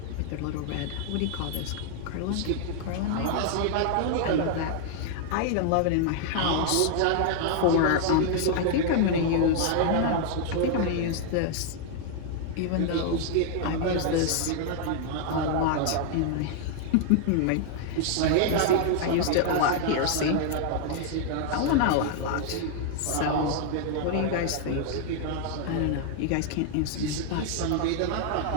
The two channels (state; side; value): different; both; correlation 0.00